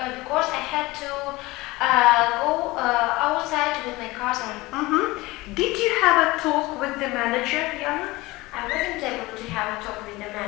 because I had to go outside with my cousin. Mm-hmm. Did you have a talk with the manager, Yana? I wasn't able to have a talk with the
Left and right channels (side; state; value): right; quieter; 20.9 dB